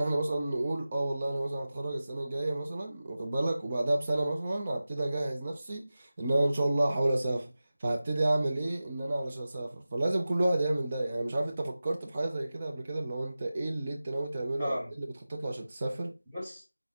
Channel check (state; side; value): inverted; both; correlation -0.95